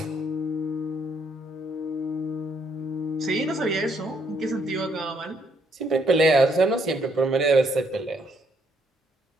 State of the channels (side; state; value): both; normal; correlation 0.70